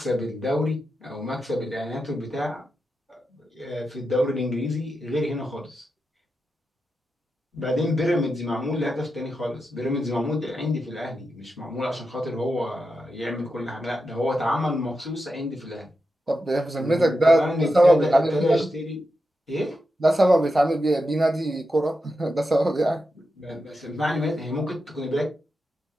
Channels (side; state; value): both; normal; correlation 0.88